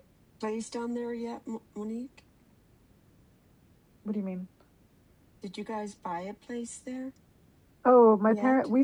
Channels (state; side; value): identical; both; correlation 1.00